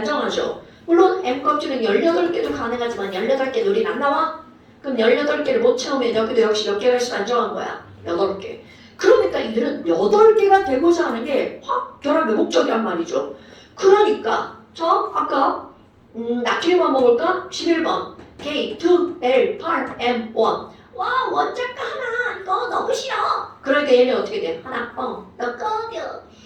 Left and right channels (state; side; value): identical; both; correlation 1.00